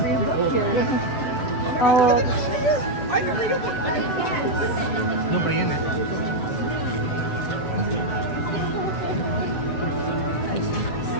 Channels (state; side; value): late; right; 7.4 ms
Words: old. Nobody in it.